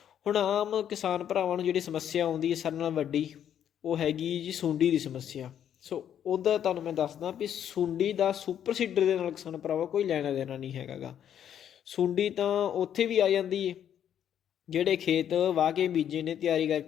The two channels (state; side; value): quieter; right; 9.7 dB